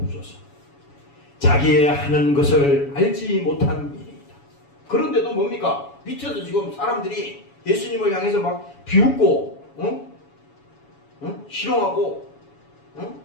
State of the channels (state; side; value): late; right; 7.1 ms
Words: 자기의 하는 것을 알지 못한 민이다. 그런데도 뭡니까? 밑에서 지금 사람들이 예수님을 향해서 막 비웃고 희롱하고